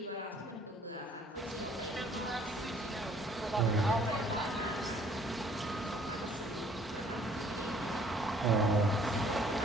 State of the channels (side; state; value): both; normal; correlation 0.59